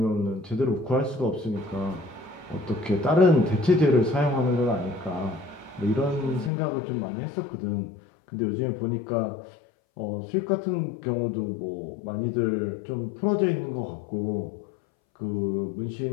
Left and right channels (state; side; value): drops out; right; at 6.5 s